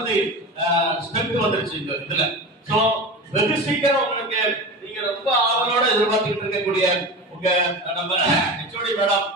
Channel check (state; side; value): normal; both; correlation 0.29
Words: தி ஸ்ட்ரென்த் வந்துருச்சு இந்த இதுல. சோ வெகு சீக்கிரம் உங்களுக்கு நீங்க ரொம்ப ஆவலோட எதிர்பார்த்துட்டு இருக்கக்கூடிய உங்க நம்ம ஹெச்ஓடி மேடம்